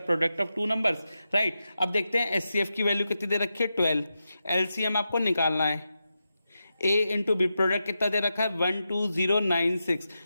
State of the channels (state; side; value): inverted; both; correlation -0.89